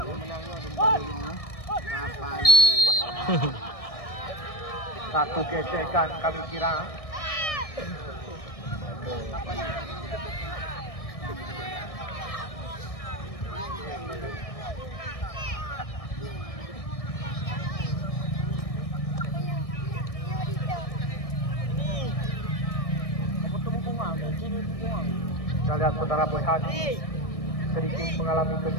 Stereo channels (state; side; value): late; right; 1.6 ms